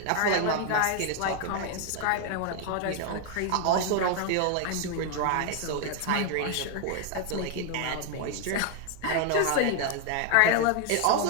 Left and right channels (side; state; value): both; different; correlation 0.00